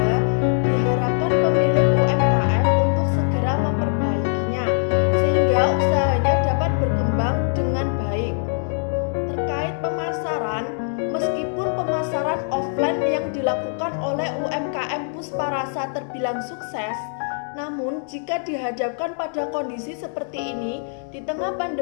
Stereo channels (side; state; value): right; silent; digital silence